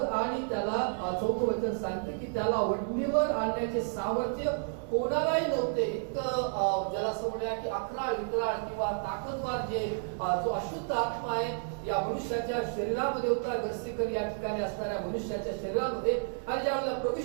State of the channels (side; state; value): left; silent; 57 dB below the other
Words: आणि त्याला 4थं वचन सांगते की त्याला वटणीवर आणण्याचे सामर्थ्य कोणालाही नव्हते. इतकं ज्याला असं म्हणूया की अकराळ विकराळ किंवा ताकदवार जो अशुद्ध आत्मा आहे या मनुष्याच्या शरीरामध्ये होता. गस्सेकर या ठिकाणी असणाऱ्या मनुष्याच्या शरीरामध्ये. आणि ज्यावेळेला प्रभू